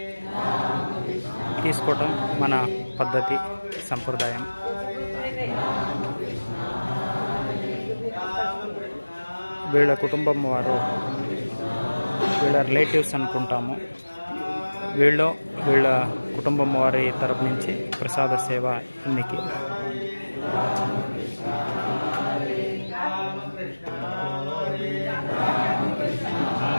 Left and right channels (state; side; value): inverted; both; correlation -1.00